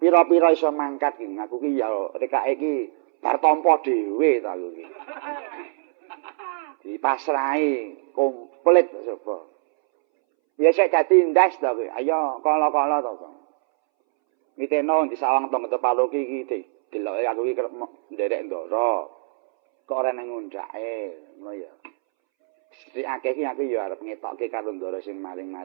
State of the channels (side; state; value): left; silent; 63 dB below the other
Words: Pira-pira iso mangkat ki aku ki ya rekake ki bar tampa dhewe ta aku ki. Dipasrahi komplit sapa. Ya sik dadi ndas ta kowe. Ayo kala-kala to. Miteno di sawang tong tepalu ki deloke aku ki kerep nderek Ndara. Kok ora nang ngundake, ngono ya. Sing akeh ki aku ya arep ngetokke karo Ndara sing